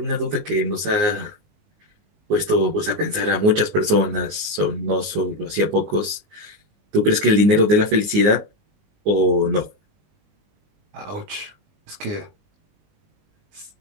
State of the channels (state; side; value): late; left; 19 ms